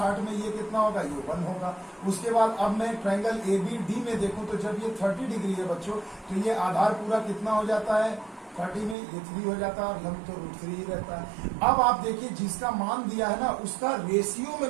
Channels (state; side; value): drops out; left; at 9.0 s